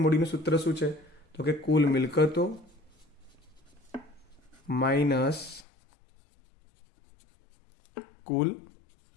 મૂડીનું સૂત્ર શું છે? તો કે કુલ મિલકતો માઇનસ કુલ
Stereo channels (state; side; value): drops out; right; at 5.7 s